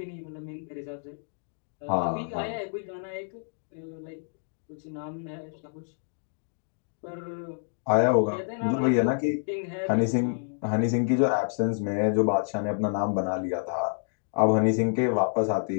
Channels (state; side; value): silent; right; digital silence